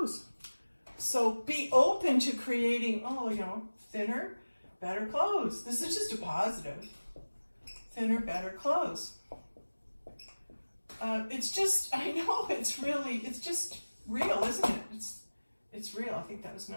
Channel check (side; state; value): both; inverted; correlation -1.00